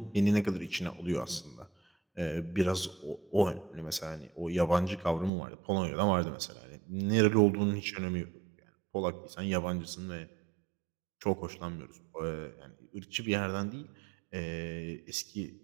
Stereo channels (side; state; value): left; drops out; at 5.3 s